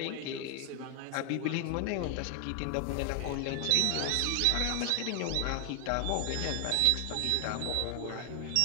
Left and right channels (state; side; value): different; both; correlation 0.00